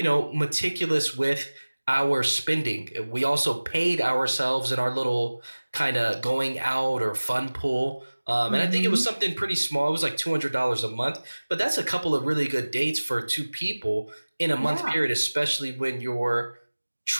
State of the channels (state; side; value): inverted; both; correlation -1.00